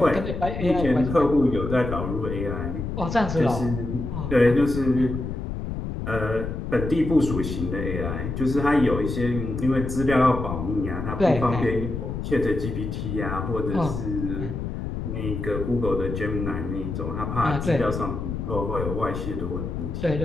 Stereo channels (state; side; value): noise; left; rumble, 5 dB below the sound